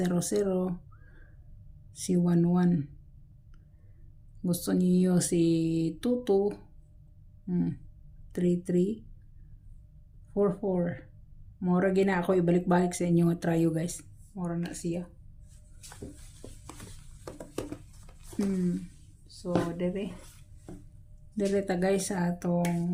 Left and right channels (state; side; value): identical; both; correlation 1.00